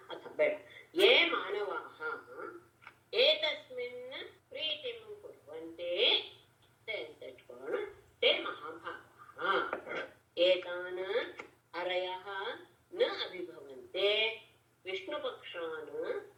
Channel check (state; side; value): identical; both; correlation 1.00